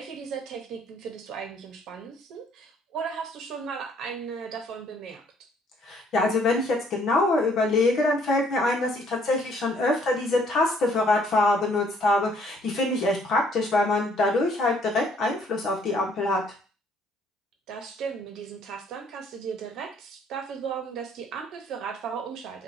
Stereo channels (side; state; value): both; normal; correlation 0.63